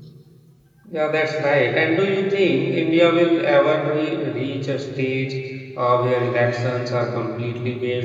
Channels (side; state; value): both; identical; correlation 1.00